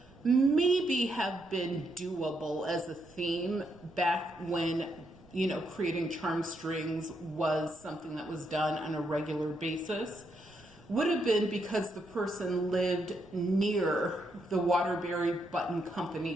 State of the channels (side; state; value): right; noise; rumble, 26 dB below the sound